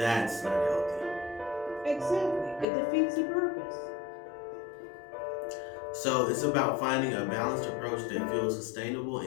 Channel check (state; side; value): drops out; right; at 2.7 s